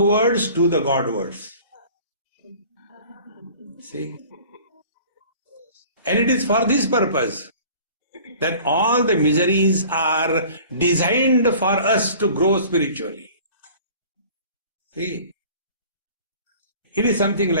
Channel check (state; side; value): inverted; both; correlation -0.47